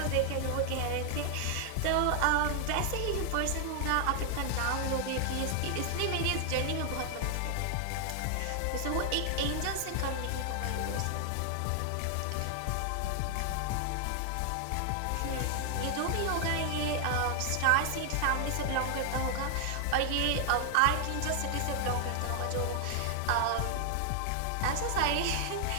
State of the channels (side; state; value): both; different; correlation 0.00